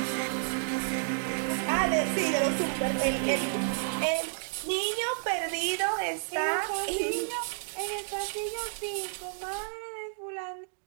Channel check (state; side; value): silent; left; digital silence